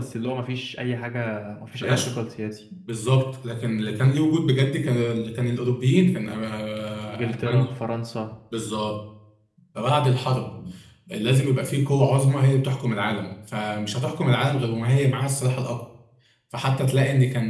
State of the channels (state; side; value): identical; both; correlation 1.00